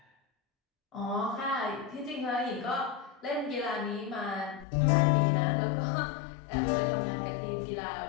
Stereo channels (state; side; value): drops out; right; at 4.7 s